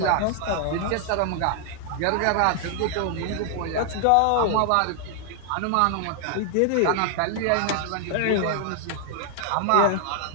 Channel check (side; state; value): both; different; correlation 0.00